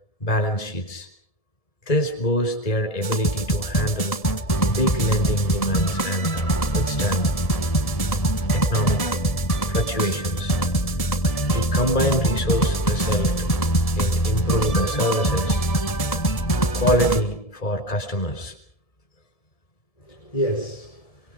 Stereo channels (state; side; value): late; right; 1.7 ms